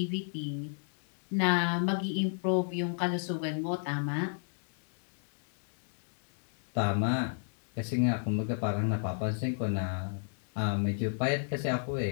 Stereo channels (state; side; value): silent; right; digital silence